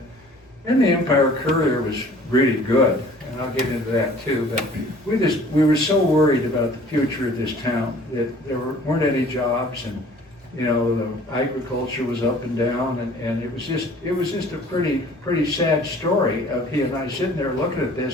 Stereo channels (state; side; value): normal; both; correlation 0.51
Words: And the Empire Courier was really good, and I'll get into that too, but we were so worried about the future of this town that there weren't any jobs, and you know, the agriculture was up and down, and it was just a pretty sad story of he and I sitting there looking at